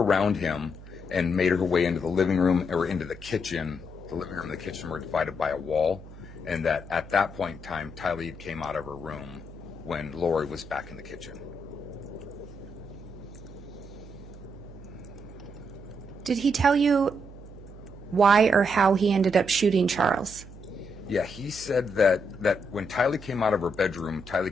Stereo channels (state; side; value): noise; right; hum, 17 dB below the sound